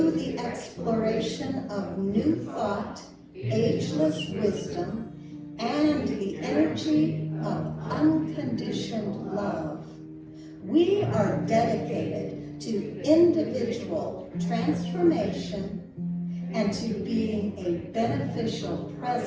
the exploration of new thought, ageless wisdom, and the energy of unconditioned love, we are dedicated to individual transformation and to being a beneficial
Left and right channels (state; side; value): identical; both; correlation 1.00